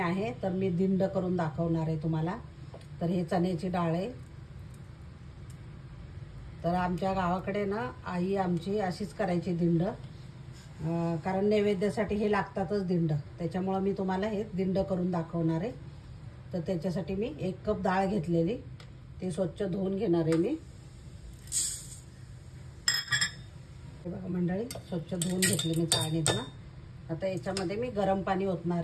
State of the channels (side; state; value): both; identical; correlation 1.00